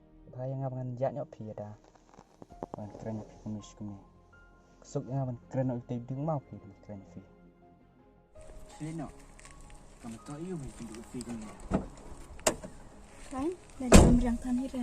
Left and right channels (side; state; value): both; identical; correlation 1.00